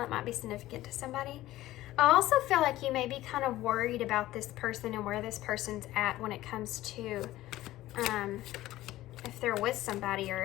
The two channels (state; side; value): quieter; right; 15.7 dB